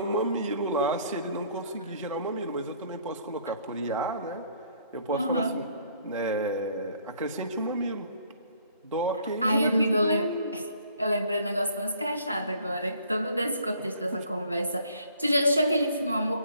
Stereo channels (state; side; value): inverted; both; correlation -0.61